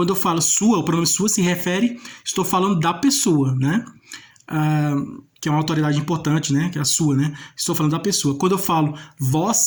eu falo sua, o pronome sua se refere, estou falando da pessoa, né? Que é uma autoridade importante, né? Que é a sua, né? Estou falando da pessoa. Quando eu falo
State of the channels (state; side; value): identical; both; correlation 1.00